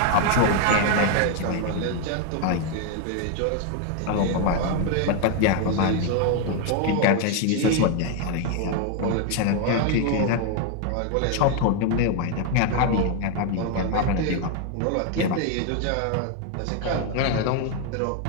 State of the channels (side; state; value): both; different; correlation 0.01